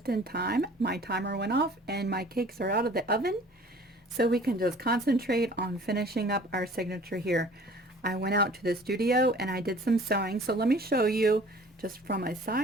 in time. My timer went off and my cakes are out of the oven, so we can just concentrate on finishing up our signature here. I went out to the studio and I did some sewing, so let me show you just from a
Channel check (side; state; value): both; normal; correlation 0.49